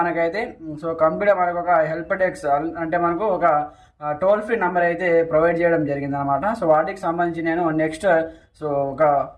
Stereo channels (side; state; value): both; identical; correlation 1.00